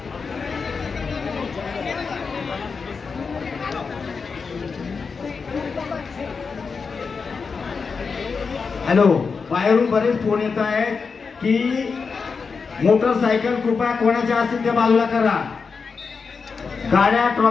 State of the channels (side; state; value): right; quieter; 5.1 dB